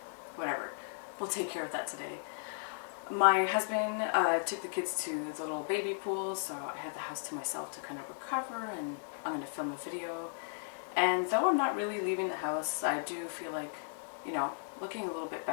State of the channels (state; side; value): silent; right; digital silence